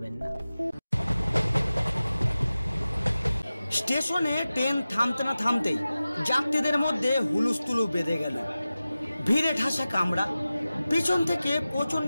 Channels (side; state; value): both; inverted; correlation -0.95